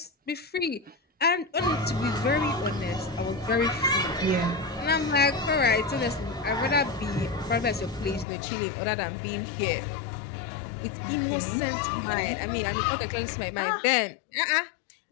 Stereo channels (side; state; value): right; drops out; at 8.2 s